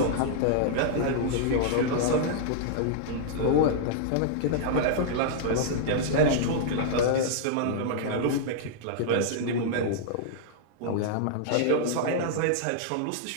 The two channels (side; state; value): both; different; correlation -0.01